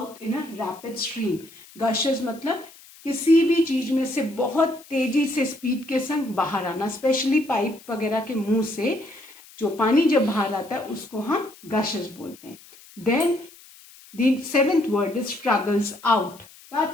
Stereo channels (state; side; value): noise; left; hiss, 22 dB below the sound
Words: in a rapid stream. Gushes मतलब किसी भी चीज में से बहुत तेजी से स्पीड के संग बाहर आना, स्पेशली पाइप वगैरह के मुंह से जो पानी जब बाहर आता है उसको हम गशेस बोलते हैं. Then the seventh word is struggles out.